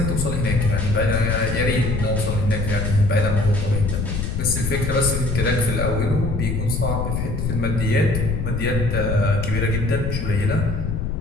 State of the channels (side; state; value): left; noise; rumble, 1 dB below the sound